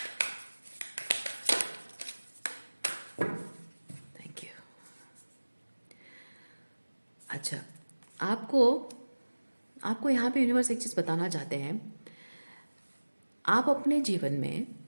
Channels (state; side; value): inverted; both; correlation -1.00